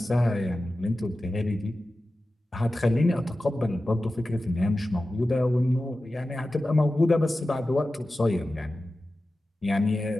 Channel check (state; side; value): normal; both; correlation 0.94